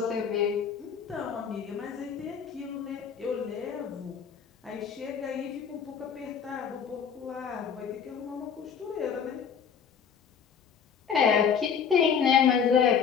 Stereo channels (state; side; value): quieter; right; 7.2 dB